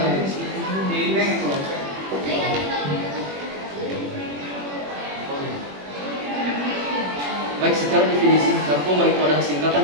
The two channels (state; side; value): late; left; 21 ms